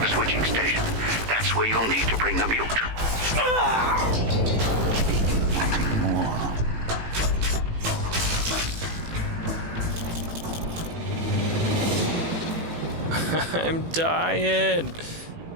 The switching station. That's where you'll need to bring the mute. More. I'm dying.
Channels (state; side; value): late; left; 18 ms